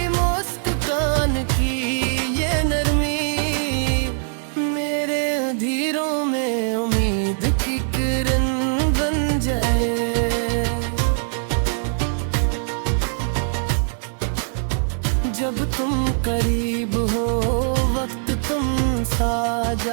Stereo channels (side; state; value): left; silent; 64 dB below the other